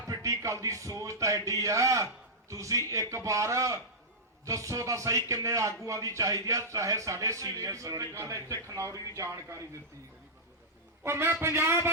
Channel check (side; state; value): both; normal; correlation -0.11